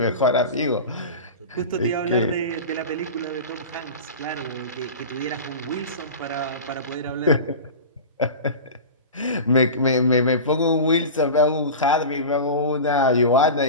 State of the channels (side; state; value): both; inverted; correlation -0.30